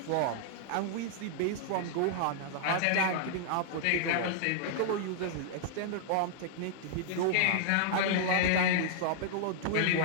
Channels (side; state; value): both; different; correlation -0.01